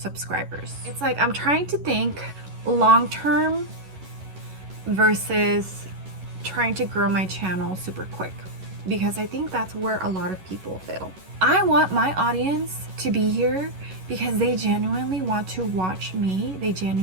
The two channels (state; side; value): late; left; 11 ms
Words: It's like I'm trying to think long term versus trying to grow my channel super quick, because I think that's where a lot of people fail. I want my audience to be here because they genuinely want to watch me, they